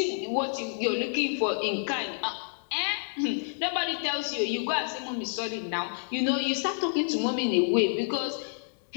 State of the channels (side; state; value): right; silent; digital silence